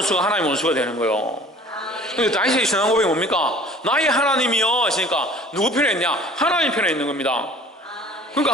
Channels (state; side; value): normal; both; correlation 0.48